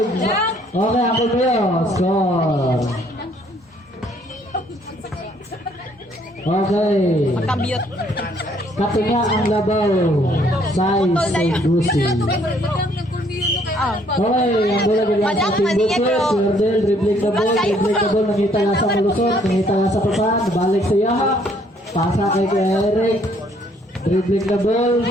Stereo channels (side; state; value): both; normal; correlation 0.64